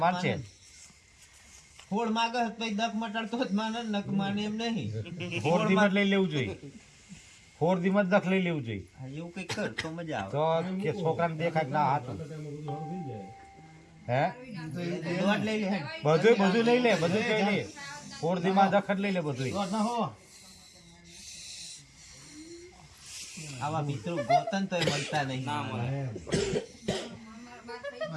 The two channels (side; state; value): both; identical; correlation 1.00